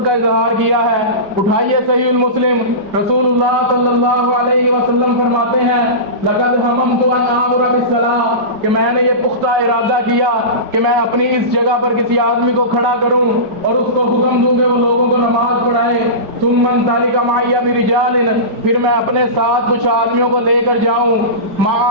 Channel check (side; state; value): left; late; 4.9 ms